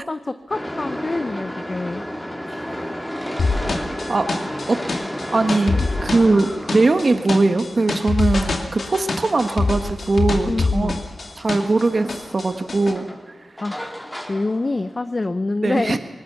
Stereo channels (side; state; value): both; normal; correlation 0.94